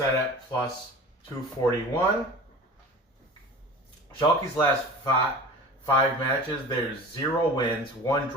at plus 241. Schalke's last 5 matches, there's 0 wins, 1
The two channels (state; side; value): normal; both; correlation 0.38